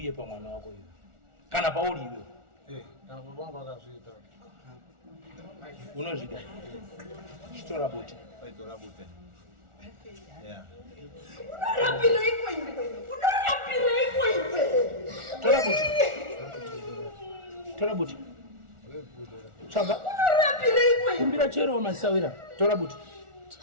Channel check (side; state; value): left; late; 1.4 ms